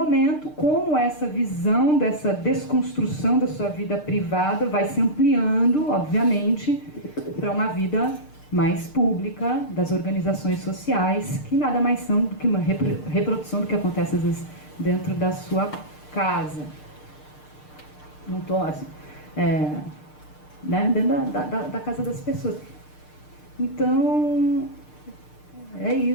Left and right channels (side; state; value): right; late; 6.6 ms